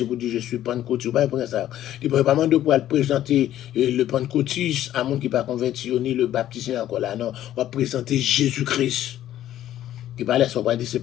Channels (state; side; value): quieter; right; 12.5 dB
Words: pour dire je suis pentecôtiste, pas pour ça. Il ne peut pas demander pour présenter le pentecôtiste à monde qui pas converti, ni le baptisé encore là, non. On va présenter Jésus-Christ. Il parle ça, on va dire c'est